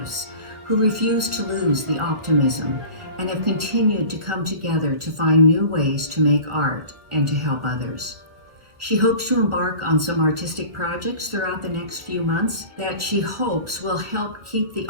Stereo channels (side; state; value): left; late; 1.4 ms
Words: who refuse to lose the optimism and have continued to come together to find new ways to make art and to help others. She hopes to embark on some artistic projects throughout the next few months that she hopes will help keep the